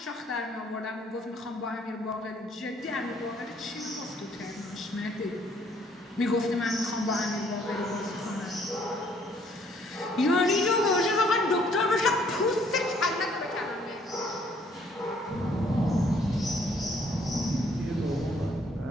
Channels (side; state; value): both; normal; correlation 0.63